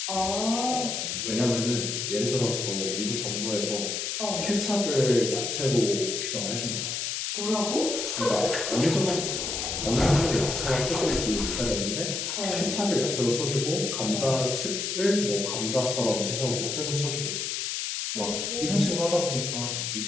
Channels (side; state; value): left; noise; hiss, 2 dB below the sound